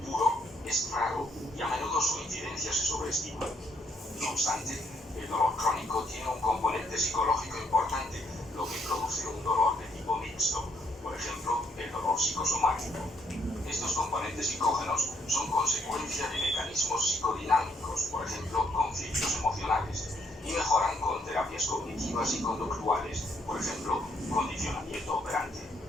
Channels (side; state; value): both; normal; correlation 0.71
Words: es raro y a menudo su incidencia se sobreestima. No obstante, el dolor crónico tiene un componente psicológico importante, lo que produce un dolor de tipo mixto, por ejemplo, el dolor psicosomático. Estos componentes psicógenos son consecuencia de mecanismos psicodinámicos, por ejemplo, conflictos emocionales, y mejoran con terapias cognitivas y conductuales, por ejemplo, condicionamiento operante.